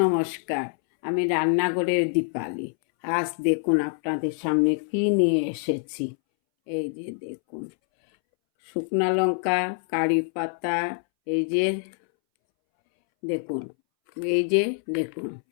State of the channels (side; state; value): right; silent; 61 dB below the other